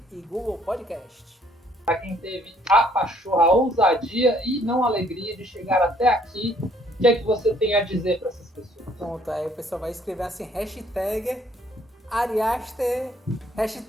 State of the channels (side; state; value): both; normal; correlation 0.63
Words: e Google Podcast. Para quem teve a pachorra, a ousadia e não a alegria de chegar até aqui, o que é que você tem a dizer para essas pessoas? Pronto, aí o pessoal vai escrever assim, hashtag Ari Aster,